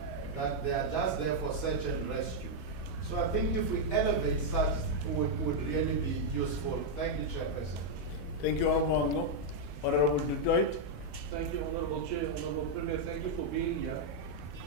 that they are just there for search and rescue. So I think if we elevate such, would really be useful. Thank you, Chairperson. Thank you, Honorable Detroit. Thank you, Honorable Chair. Honorable Premier, thank you for being here.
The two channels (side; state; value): both; normal; correlation -0.02